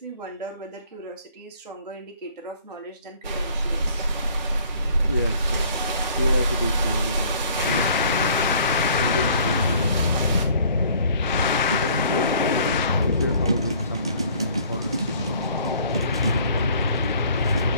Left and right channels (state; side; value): inverted; both; correlation -0.56